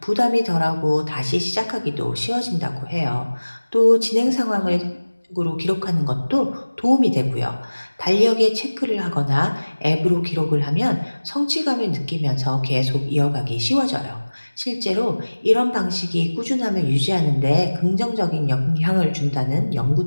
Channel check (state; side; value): inverted; both; correlation -1.00